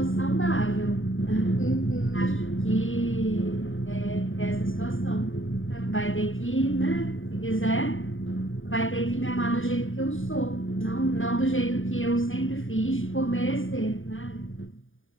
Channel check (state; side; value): late; right; 0.58 ms